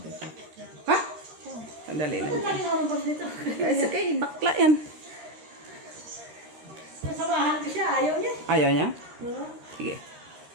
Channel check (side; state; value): left; late; 13 ms